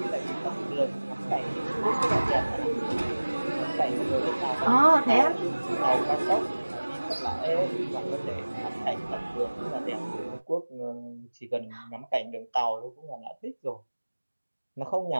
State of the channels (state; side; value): inverted; both; correlation -1.00